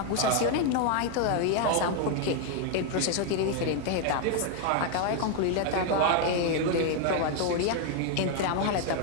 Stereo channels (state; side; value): different; both; correlation 0.01